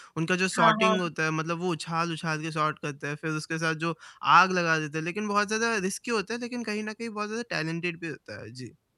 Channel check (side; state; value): both; identical; correlation 1.00